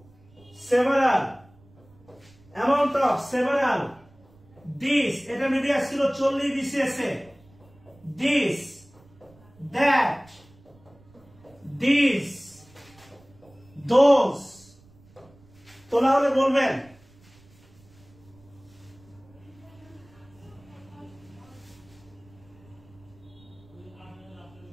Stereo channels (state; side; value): noise; right; rumble, 27 dB below the sound